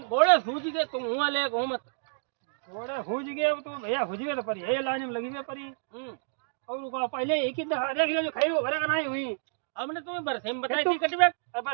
सूझ गए, तुम हुआ ले घूम मत। घोड़े हुज गए अब तो भैया हुज गए तो परी ये लाइन में लगी हुई परी और को पहले एक ही दफा देख ले जो खाई हो भरे का नहीं हुई हमने तुम्हें बरसे में बताई थी कटवे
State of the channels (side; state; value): left; silent; digital silence